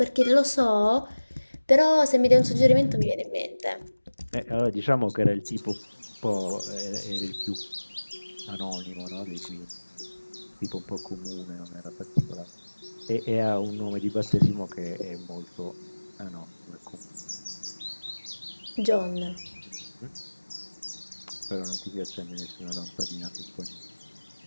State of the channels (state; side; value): inverted; both; correlation -1.00